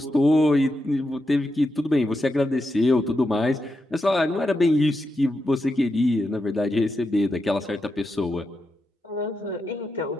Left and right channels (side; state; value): both; normal; correlation 0.86